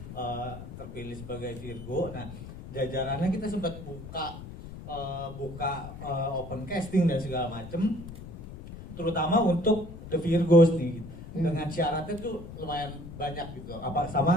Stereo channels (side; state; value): left; noise; rumble, 12 dB below the sound